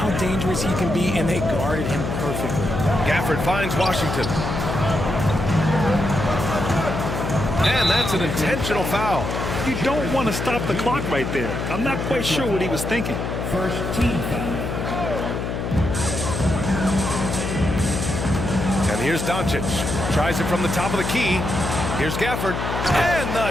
dangerous he can be, and they guarded him perfectly. Gafford finds Washington. And that's an intentional foul. You don't want to stop the clock right there. I'm not quite sure what he was thinking. First team foul. And here's Doncic. Tries it from the top of the key. Here's Gafford. And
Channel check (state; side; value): noise; left; hum, 3 dB below the sound